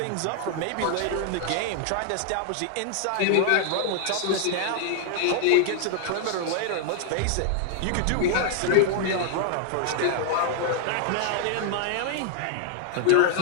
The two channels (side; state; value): both; different; correlation 0.00